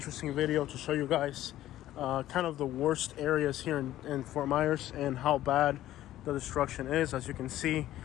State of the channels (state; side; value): quieter; right; 13.8 dB